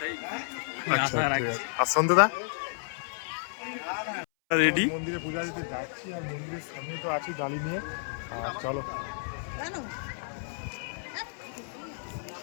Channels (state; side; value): silent; right; 57 dB below the other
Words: আচ্ছা, ঠিক আছে। আর সন্তুদা রেডি। মন্দিরে পূজা দিতে যাচ্ছি, আর মন্দিরের সামনে তো আছি ডালি নিয়ে। আর চলো